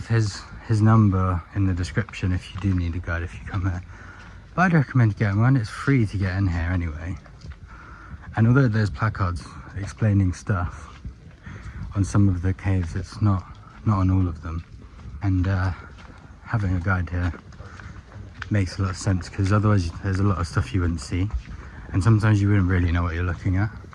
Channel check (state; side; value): identical; both; correlation 1.00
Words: his number in the description if you do need a guide if you come here. But I'd recommend getting one. It's free to get in here anyway. And although there's placards explaining stuff on some of the caves, it's not on all of them. And having a guide here makes a lot of sense, because otherwise there's a lot of stuff you wouldn't see, and sometimes you wouldn't really know what you're looking at.